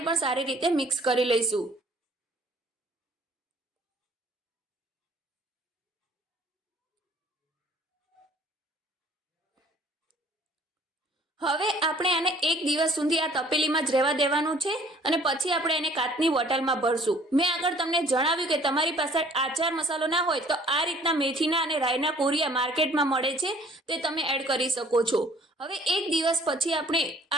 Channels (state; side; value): normal; both; correlation 0.55